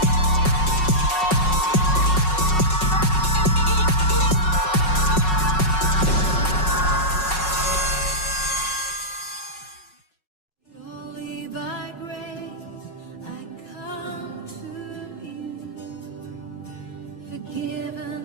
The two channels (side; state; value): right; late; 5.4 ms